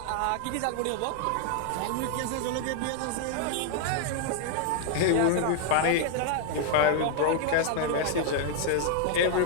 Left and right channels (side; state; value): both; different; correlation 0.00